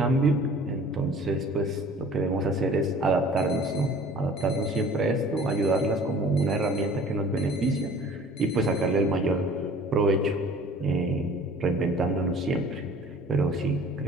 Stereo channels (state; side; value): normal; both; correlation 0.48